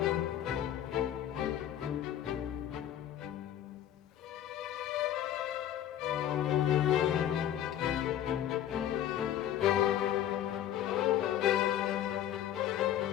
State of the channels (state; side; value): quieter; right; 11.3 dB